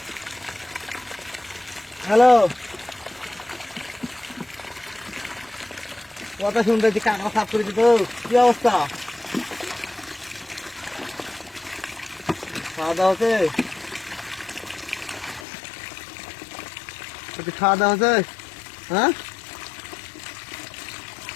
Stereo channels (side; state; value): right; drops out; at 15.5 s